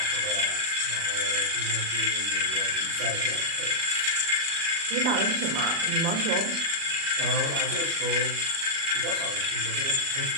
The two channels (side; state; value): left; late; 37 ms